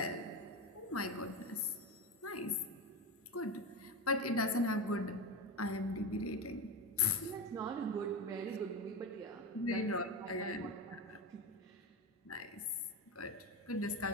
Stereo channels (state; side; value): normal; both; correlation 0.20